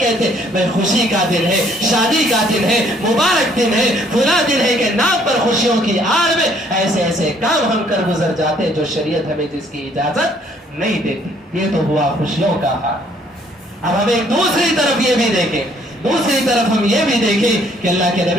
میں خوشی کا دن ہے, شادی کا دن ہے, مبارک دن ہے, بھلا دن ہے, کہ نام پر خوشیوں کی آڑ میں ایسے ایسے کام ہم کر گزر جاتے ہیں جو شریعت ہمیں جس کی اجازت نہیں دیتی. یہ تو ہوا خوشیوں کا حال. اب ہم ایک دوسری طرف یہ بھی دیکھیں دوسری طرف ہم یہ بھی دیکھیں کہ اللہ کے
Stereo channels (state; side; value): normal; both; correlation 0.63